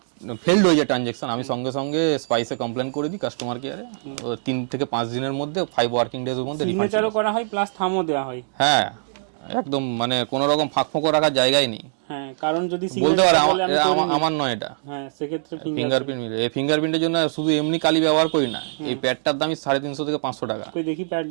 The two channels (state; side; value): silent; left; digital silence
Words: ফেলড হয়ে যায় ট্রানজেকশন, আমি সঙ্গে সঙ্গে স্পাইসে কমপ্লেন করে দিই কাস্টমার কেয়ারে। 3 থেকে 5 দিনের মধ্যে, 5 ওয়ার্কিং ডেজ এর মধ্যে সিগনেচারও করা হয় প্লাস থামও দেওয়া হয়। হ্যাঁ, একদম মানে কোনো রকম ফাঁক ফোঁকো রাখার জায়গাই নেই। হ্যাঁ, কারণ যদি বলতে সিগনেচার পারে বলে আমি করিনি, আমার নয় এটা। হ্যাঁ সেক্ষেত্রে ফিঙ্গারপ্রিন্ট, এই ফিঙ্গারপ্রিন্টের জন্য শুধু এমনি কালি ব্যবহার করি না, এই প্যাডটার দামই 350 থেকে 500 টাকা। কই দেখি